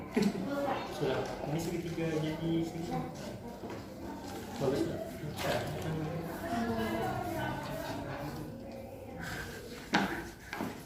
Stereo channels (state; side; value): identical; both; correlation 1.00